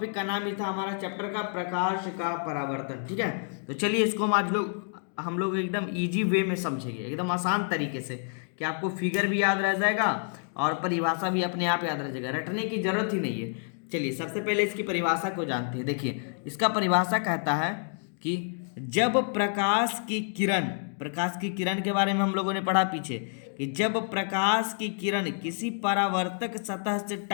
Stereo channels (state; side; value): silent; right; 59 dB below the other